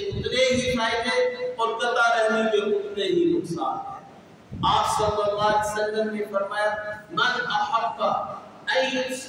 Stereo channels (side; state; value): both; identical; correlation 1.00